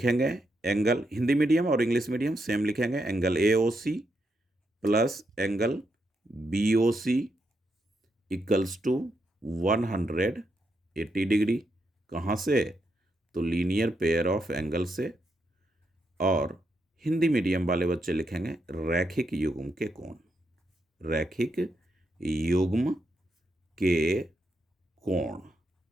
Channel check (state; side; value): normal; both; correlation 0.81